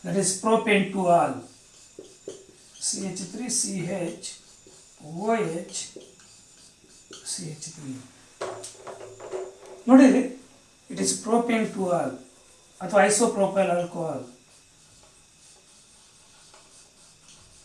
that is propane two ol, CH3 CH OH CH3. ನೋಡಿರಿ, it is propane two ol ಅಥವಾ isopropyl alcohol.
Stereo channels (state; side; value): identical; both; correlation 1.00